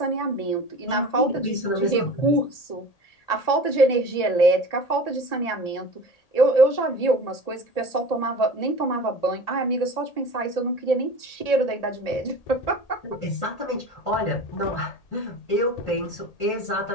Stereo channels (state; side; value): late; right; 1.8 ms